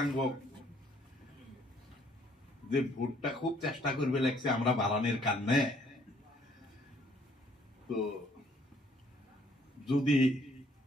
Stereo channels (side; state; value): both; normal; correlation 0.63